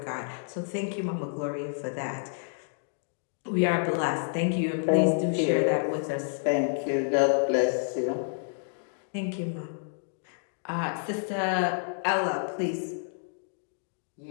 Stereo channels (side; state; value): right; silent; digital silence